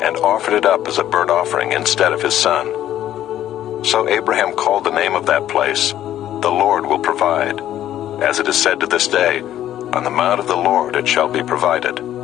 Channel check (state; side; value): quieter; right; 12.1 dB